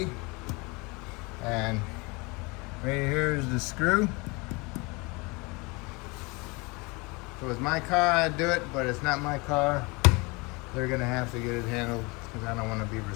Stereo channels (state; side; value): quieter; right; 27.1 dB